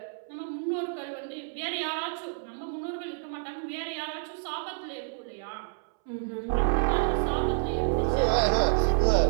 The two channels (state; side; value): silent; left; 59 dB below the other